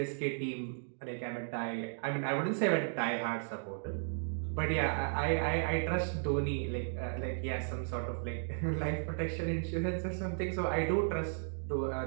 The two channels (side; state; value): left; silent; digital silence